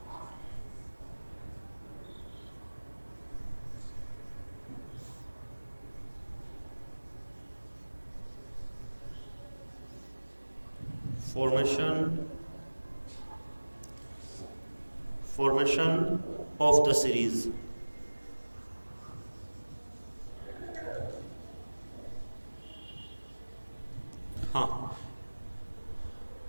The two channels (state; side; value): inverted; both; correlation -1.00